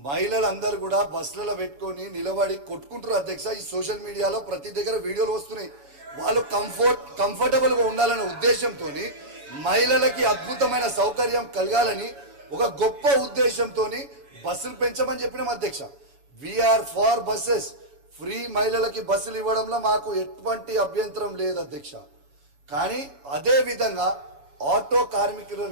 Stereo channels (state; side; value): late; left; 7.1 ms